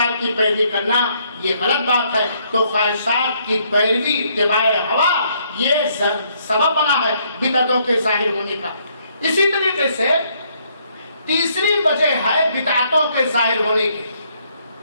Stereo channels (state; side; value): inverted; both; correlation -0.70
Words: کی پیروی کرنا یہ غلط بات ہے۔ تو خواہشات کی پیروی، اتباع ہوا، یہ سبب بنا ہے بدعتوں کے ظاہر ہونے کا۔ اسی طریقے سے تیسری وجہ ہے بدعتوں کے ظاہر ہونے کی،